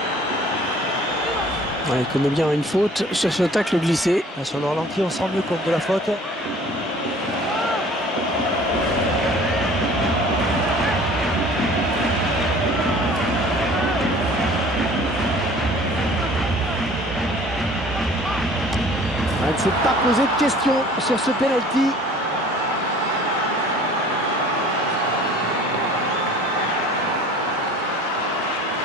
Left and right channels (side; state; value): both; normal; correlation 0.49